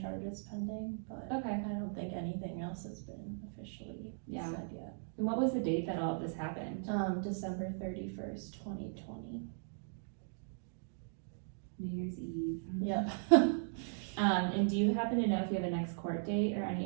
pending, but Okay. I don't think anything else has been officially Yeah. said yet. And what was the date that all of this happened? December 31st, 2020. New Year's Eve. Yep. And do you happen to know if you have a next court date or any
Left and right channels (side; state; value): left; silent; digital silence